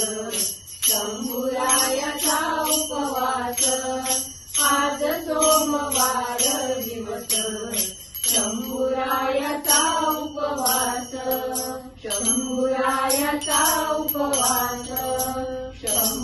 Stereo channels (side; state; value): both; identical; correlation 1.00